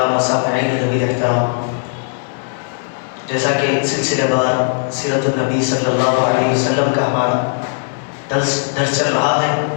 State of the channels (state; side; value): silent; right; digital silence